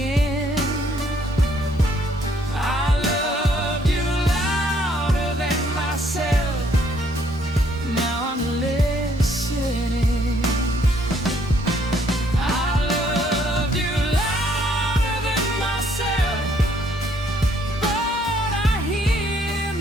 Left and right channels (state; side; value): normal; both; correlation 0.66